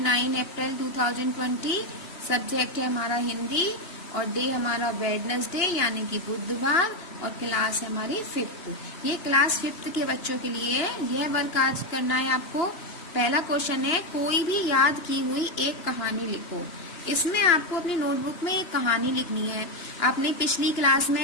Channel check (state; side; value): late; right; 2.9 ms